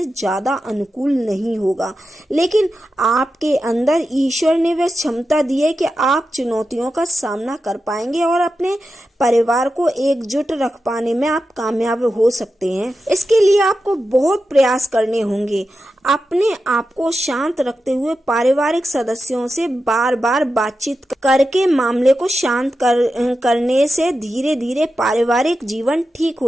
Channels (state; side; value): normal; both; correlation 0.91